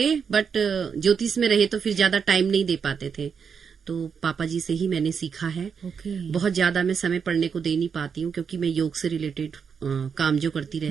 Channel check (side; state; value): left; quieter; 6.5 dB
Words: बट ज्योतिष में रहे तो फिर ज्यादा टाइम नहीं दे पाते थे, तो पापा जी से ही मैंने सीखा है। बहुत ज्यादा मैं समय पढ़ने को दे नहीं पाती हूँ क्योंकि मैं योग से रिलेटेड काम जो करती